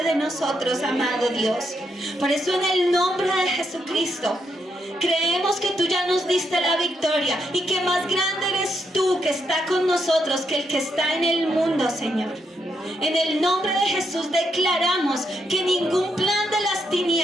de nosotros, amado Dios. Por eso, en el nombre de Jesucristo, creemos que tú ya nos diste la victoria y que más grande eres tú que está con nosotros que el que está en el mundo, Señor. En el nombre de Jesús declaramos que ningún plan de las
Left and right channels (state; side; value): normal; both; correlation 0.79